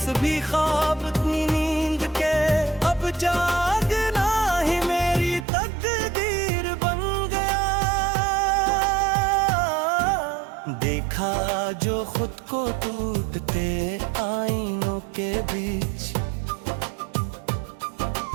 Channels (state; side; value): drops out; left; at 5.5 s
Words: ख्वाब अपनी नींद के, अब जागना ही मेरी तकदीर बन गया। देखा जो खुद को टूटते आईनों के बीच,